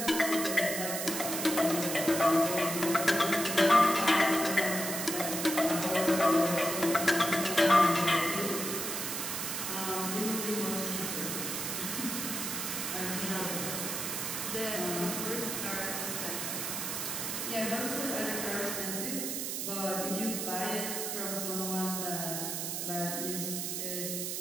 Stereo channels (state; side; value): noise; right; hiss, 3 dB below the sound